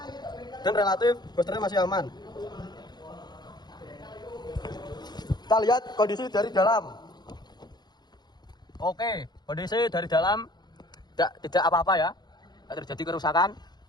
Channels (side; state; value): right; late; 0.20 ms